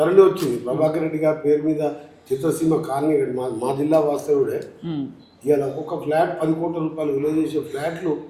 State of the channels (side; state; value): both; identical; correlation 1.00